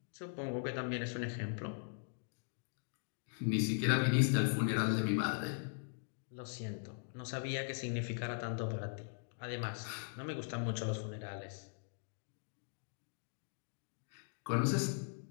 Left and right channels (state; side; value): silent; right; digital silence